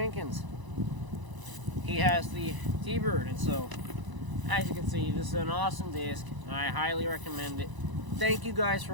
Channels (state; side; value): late; left; 1.0 ms